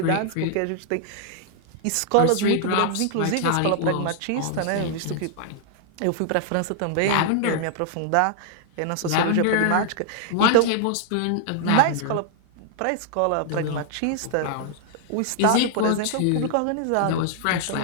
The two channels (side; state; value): both; different; correlation -0.01